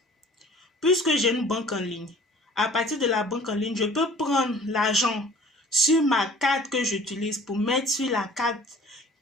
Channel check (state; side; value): normal; both; correlation 0.49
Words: puisque j'ai une banque en ligne, à partir de la banque en ligne, je peux prendre l'argent sur ma carte que j'utilise pour mettre sur la carte